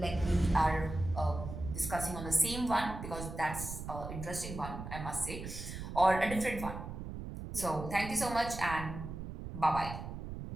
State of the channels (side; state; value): right; noise; rumble, 8 dB below the sound